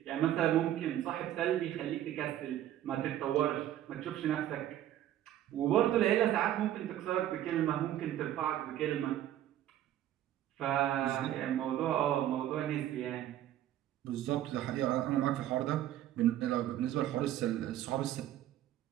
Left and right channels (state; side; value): quieter; left; 12.4 dB